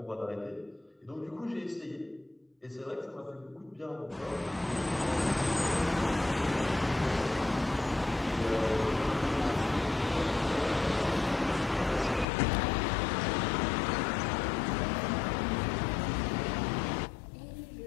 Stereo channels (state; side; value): drops out; right; at 12.2 s